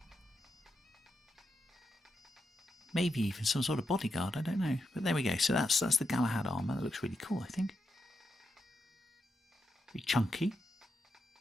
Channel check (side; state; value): both; normal; correlation 0.85